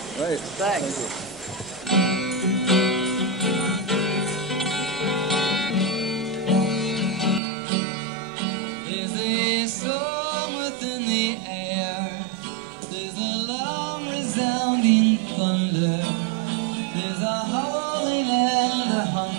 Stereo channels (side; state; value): left; drops out; at 7.4 s